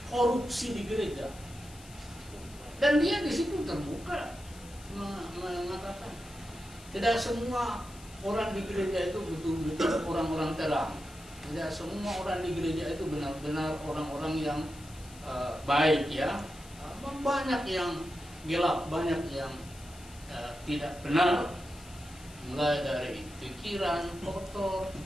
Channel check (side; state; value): left; noise; hiss, 20 dB below the sound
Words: korupsi di gereja, dan dia di situ terbuka mengatakan tidak semua orang di gereja itu betul-betul orang-orang terang, tidak semua orang di gereja itu benar-benar orang-orang yang baik ya, banyak yang gelap, banyak yang tidak benar. Mulai dari pikiran kotor,